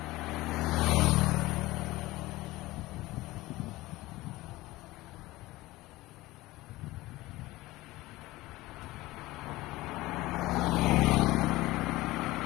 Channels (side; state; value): right; quieter; 18.9 dB